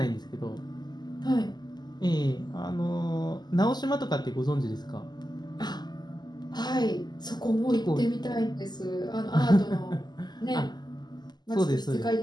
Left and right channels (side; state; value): right; late; 0.21 ms